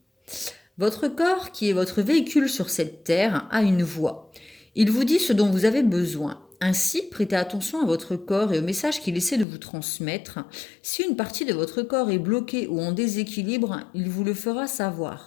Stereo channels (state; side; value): drops out; right; at 9.5 s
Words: Votre corps, qui est votre véhicule sur cette terre, a une voix. Il vous dit ce dont vous avez besoin. Ainsi, prêtez attention à votre corps et au message qu'il essaie de vous transmettre. Si une partie de votre corps est bloquée ou en déséquilibre, il vous le fera